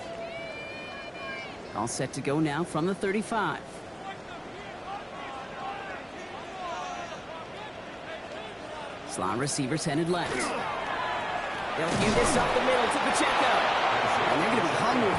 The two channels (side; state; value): both; identical; correlation 1.00